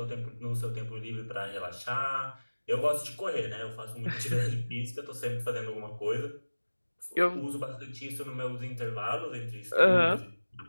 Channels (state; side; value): inverted; both; correlation -1.00